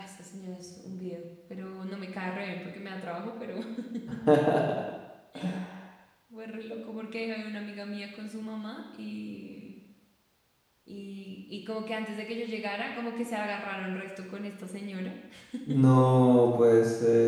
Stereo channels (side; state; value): both; identical; correlation 1.00